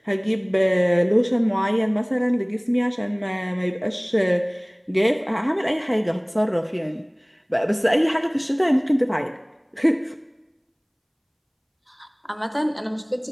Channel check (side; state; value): both; identical; correlation 1.00